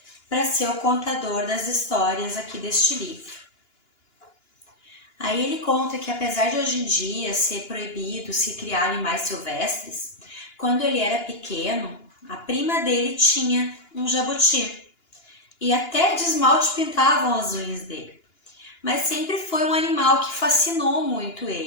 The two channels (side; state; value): right; late; 2.9 ms